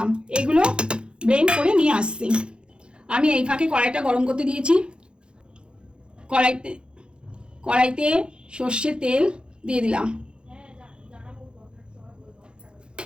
এগুলো ব্লেন্ড করে নিয়ে আসছি। আমি এই ফাঁকে কড়াইটা গরম করতে দিয়েছি। কড়াইতে সর্ষের তেল দিয়ে দিলাম।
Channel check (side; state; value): left; late; 0.053 ms